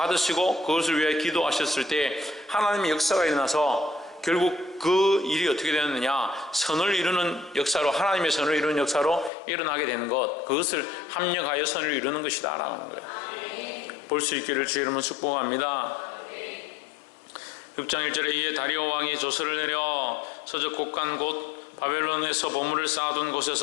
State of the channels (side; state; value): right; drops out; at 9.3 s